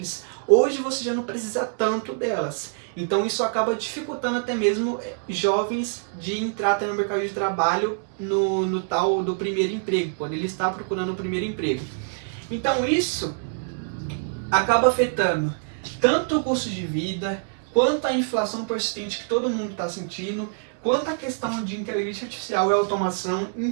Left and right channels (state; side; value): silent; left; digital silence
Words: hoje você já não precisa tanto delas. Então, isso acaba dificultando até mesmo jovens de entrar até no mercado de trabalho no tal do primeiro emprego, quando ele está procurando o primeiro emprego. Então, isso acaba afetando tanto o custo de vida, quanto a inflação persistente que todo mundo está sentindo, quanto a questão de inteligência artificial e automação,